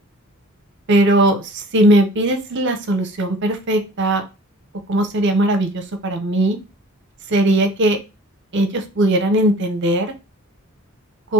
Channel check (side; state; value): both; normal; correlation 0.46